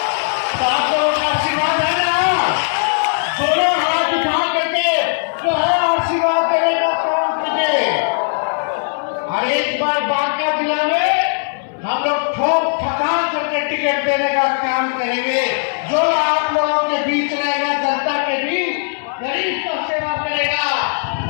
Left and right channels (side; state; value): right; silent; digital silence